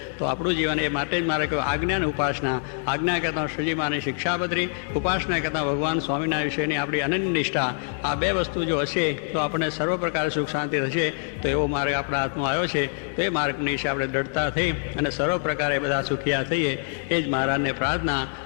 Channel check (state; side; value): silent; right; 62 dB below the other